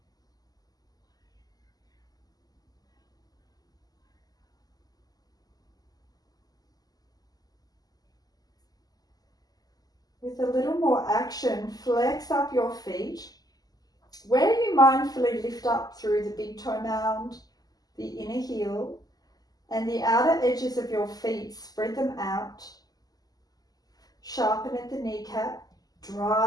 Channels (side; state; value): right; late; 0.18 ms